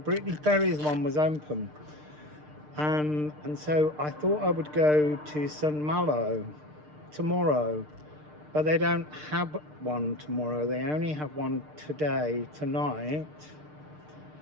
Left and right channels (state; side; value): late; left; 6.6 ms